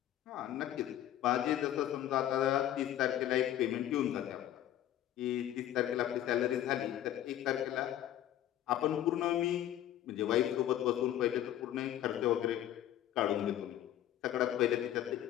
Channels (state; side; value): quieter; right; 12.2 dB